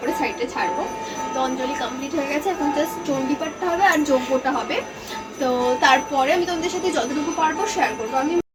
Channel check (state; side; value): identical; both; correlation 1.00